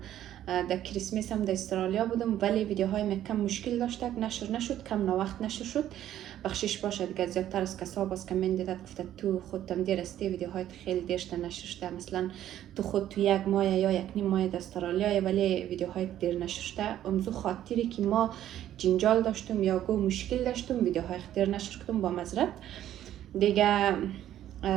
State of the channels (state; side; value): quieter; left; 11.9 dB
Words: در کریسمس هم در استرالیا بودم ولی ویدیوهای ما کم مشکل داشت نشر نشد، کم وقت نشر شد. بخشش باشه دیگه. زیادتر از کسا باز کامنت داد گفته تو خودت دیر استی ویدیوهای خیلی دیرشته نشر شده، مثلا تو خود تو یک ماه یا یک نیم ماه در استرالیا ولی ویدیوهای دیر نشر شده. امزو خاطری که ما جنجال داشتم یا گو مشکل داشتم ویدیوهای دیر نشر کردم با معذرت دیگه.